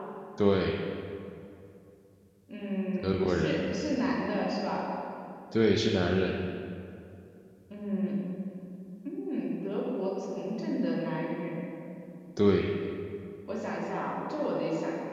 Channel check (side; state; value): both; identical; correlation 1.00